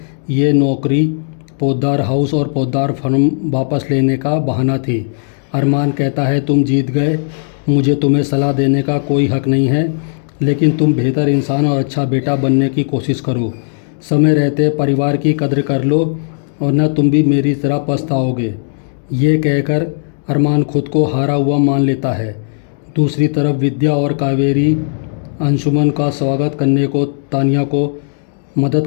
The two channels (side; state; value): right; silent; 70 dB below the other